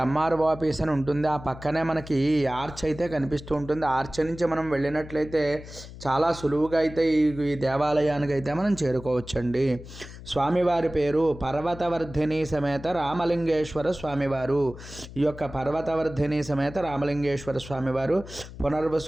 ఎంఆర్ఓ ఆఫీస్ అని ఉంటుంది. ఆ పక్కనే మనకి ఆర్చ్ అయితే కనిపిస్తూ ఉంటుంది. ఆర్చ్ నుంచి మనం వెళ్ళినట్లయితే చాలా సులువుగా అయితే ఈ దేవాలయానికి అయితే మనం చేరుకోవచ్చండి. స్వామివారి పేరు పర్వతవర్ధిని సమేత రామలింగేశ్వర స్వామివారు. ఈ యొక్క పర్వతవర్ధిని సమేత రామలింగేశ్వర స్వామివారు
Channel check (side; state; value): left; noise; hum, 15 dB below the sound